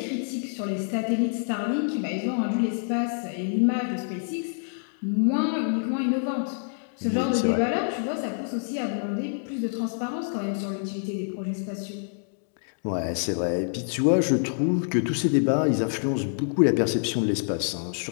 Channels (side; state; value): right; silent; digital silence